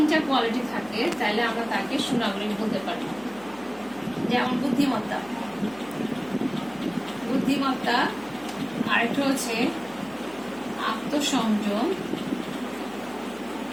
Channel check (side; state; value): left; noise; hum, 25 dB below the sound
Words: কোয়ালিটি থাকে তাহলে আমরা তাকে সুনাগরিক বলতে পারি। যেমন বুদ্ধিমত্তা, আরেকটা হচ্ছে আত্মসংযম